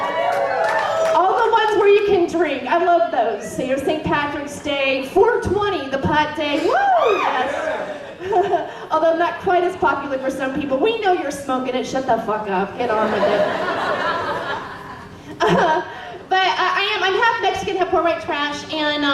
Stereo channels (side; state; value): both; identical; correlation 1.00